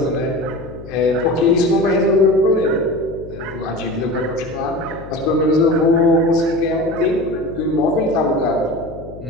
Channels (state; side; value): noise; left; hum, 16 dB below the sound